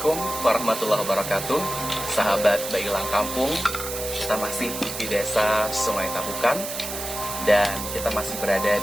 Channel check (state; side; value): noise; right; hiss, 7 dB below the sound